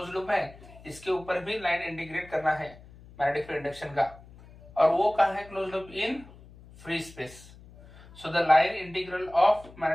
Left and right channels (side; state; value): left; noise; hum, 21 dB below the sound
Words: लूप है इसके ऊपर भी लाइन इंटीग्रेट करना है मैग्नेटिक फील्ड इंडक्शन का। और वो कहां है close loop? In free space. So the line integral of